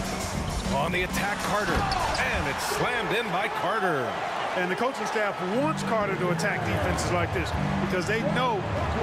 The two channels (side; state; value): both; identical; correlation 1.00